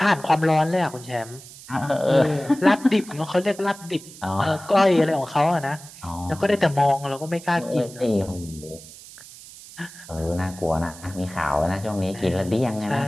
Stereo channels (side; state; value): right; noise; hiss, 18 dB below the sound